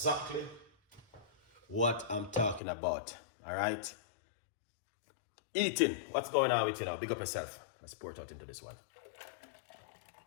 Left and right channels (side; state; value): right; drops out; at 2.6 s